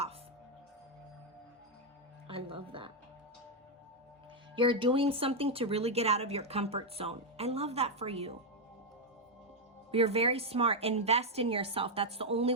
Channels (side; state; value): both; normal; correlation 0.01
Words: I love that. You're doing something to really get out of your comfort zone. I love that for you. You're very smart. Invest in yourself. That's the only